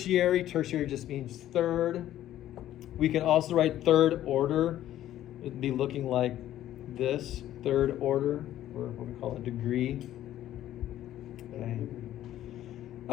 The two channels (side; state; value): right; quieter; 12.7 dB